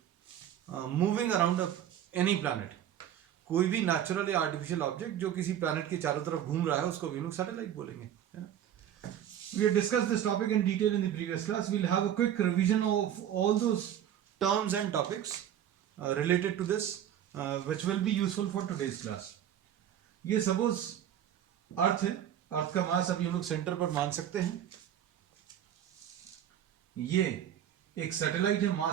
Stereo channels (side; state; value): left; quieter; 10.4 dB